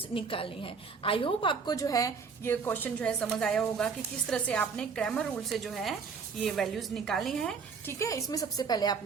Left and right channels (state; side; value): quieter; left; 5.5 dB